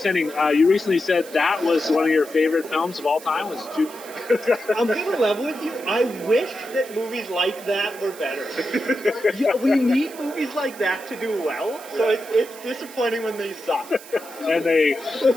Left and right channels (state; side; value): noise; right; hiss, 18 dB below the sound